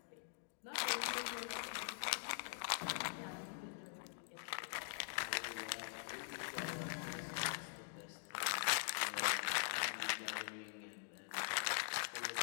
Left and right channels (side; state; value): right; silent; digital silence